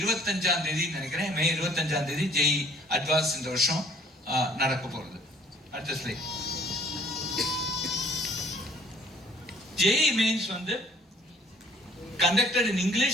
தேதி நினைக்கிறேன், மே 25ஆம் தேதி ஜேஇ அட்வான்ஸ் இந்த வருஷம் நடக்க போறது. அடுத்த ஸ்லைட். JEE Mains வந்து conducted in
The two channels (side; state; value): both; normal; correlation 0.57